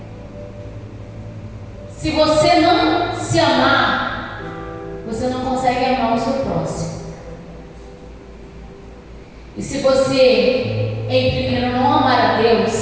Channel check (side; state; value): both; identical; correlation 1.00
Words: se você não se amar, você não consegue amar o seu próximo. E se você, em primeiro, não amar a